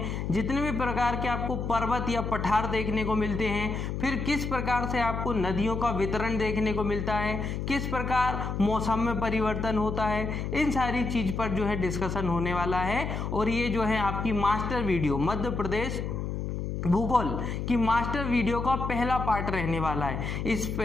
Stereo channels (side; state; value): left; noise; hum, 3 dB below the sound